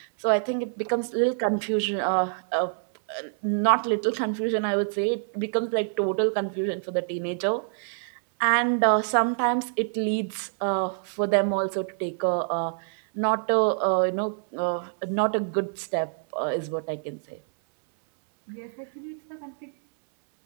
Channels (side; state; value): left; silent; 61 dB below the other